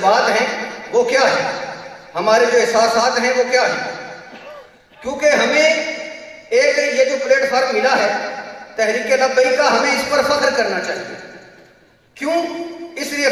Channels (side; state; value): both; identical; correlation 1.00